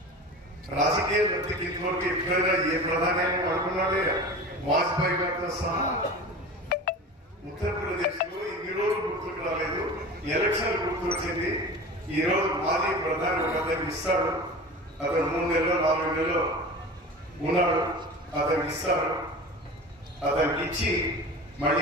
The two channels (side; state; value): both; normal; correlation 0.34